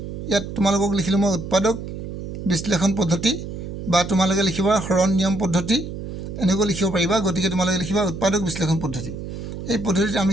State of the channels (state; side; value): noise; right; hum, 8 dB below the sound